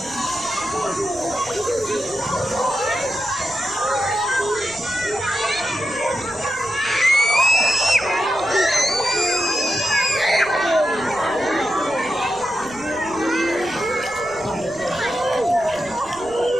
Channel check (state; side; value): noise; right; rumble, 22 dB below the sound